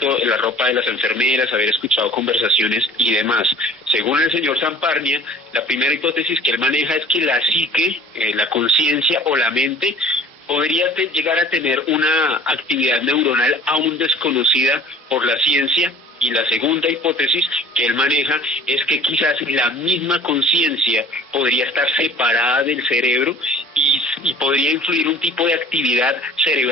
la ropa de las enfermeras, haber escuchado conversaciones y demás. Según el señor Samparnia, la primera hipótesis que él maneja es que la psique, la conciencia o la mente podría llegar a tener una actividad neuronal aún desconocida por la ciencia. Y la segunda hipótesis que él maneja es que quizás la misma conciencia podría estar separada del cerebro y podría influir un tipo de actividad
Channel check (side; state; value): both; normal; correlation 0.48